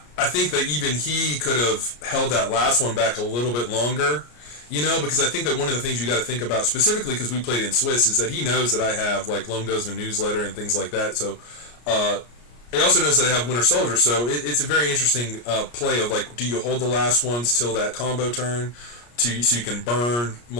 I think that even he could have held that last one back a little bit longer, you know, because I think that one of the things you got to think about, specifically because we played in Swiss, is that he knows that I have, like, Lone Guzman newsletter and things like that, so he also knows that I have Winter Soldier, so it's a very interesting play of, like, do you hold the last ones till that combo turn, so you can burn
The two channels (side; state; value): right; late; 34 ms